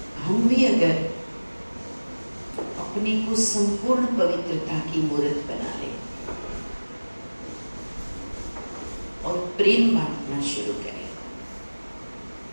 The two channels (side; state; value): both; inverted; correlation -1.00